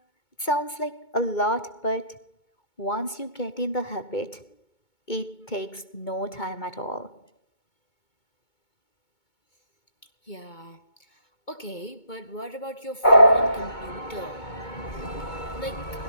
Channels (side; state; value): right; late; 2.2 ms